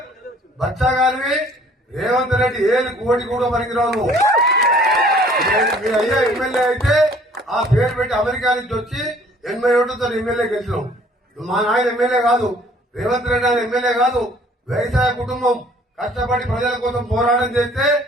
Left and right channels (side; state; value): both; normal; correlation 0.56